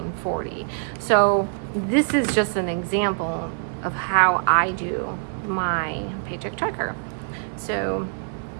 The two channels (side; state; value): left; silent; digital silence